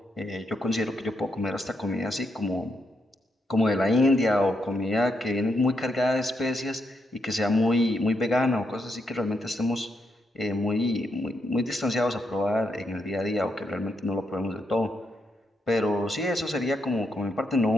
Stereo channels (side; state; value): both; normal; correlation 0.80